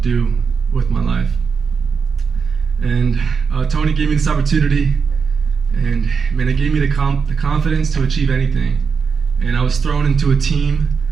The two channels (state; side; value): quieter; left; 5.7 dB